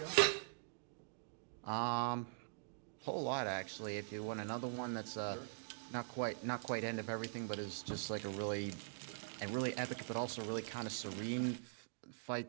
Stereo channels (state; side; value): silent; left; digital silence